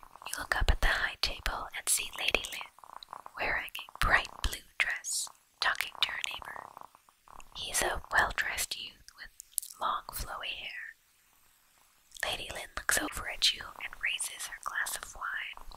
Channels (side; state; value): both; identical; correlation 1.00